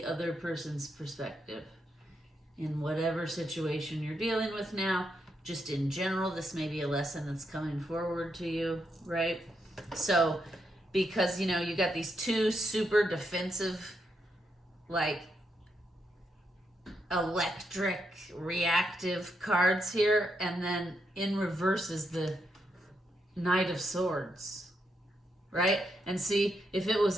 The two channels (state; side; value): normal; both; correlation 0.81